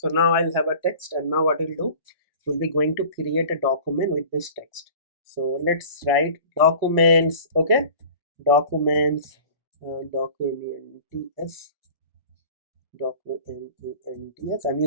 now I'll have a text, and now what we'll do, we'll be going to create a document with this text. So let's write documents. Okay, documents, documents, documents. I'm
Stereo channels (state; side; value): inverted; both; correlation -0.42